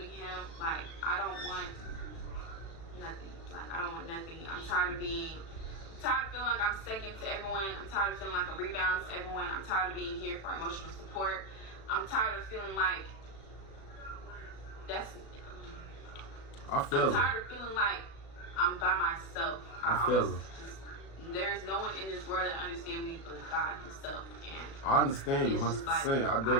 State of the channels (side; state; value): right; late; 36 ms